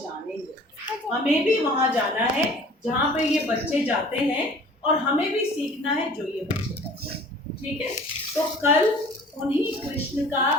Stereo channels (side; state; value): both; normal; correlation 0.48